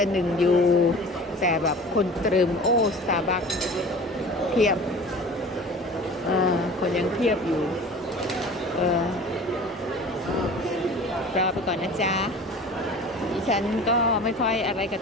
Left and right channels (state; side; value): normal; both; correlation 0.41